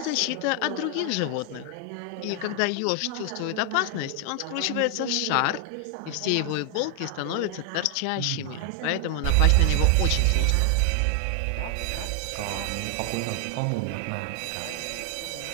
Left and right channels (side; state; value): both; different; correlation 0.00